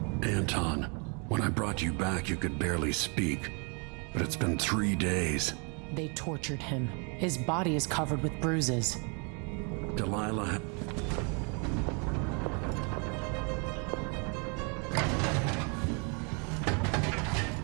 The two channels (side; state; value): left; quieter; 35.3 dB